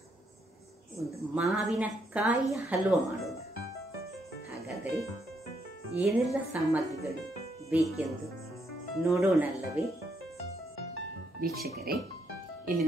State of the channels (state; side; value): normal; both; correlation 0.75